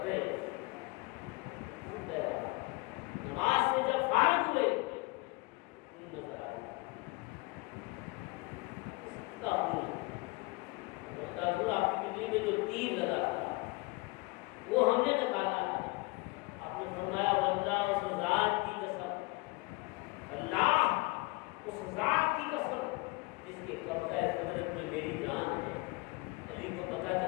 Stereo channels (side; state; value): right; quieter; 24.8 dB